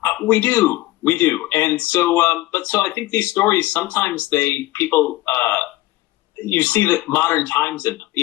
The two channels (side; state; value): right; quieter; 18.2 dB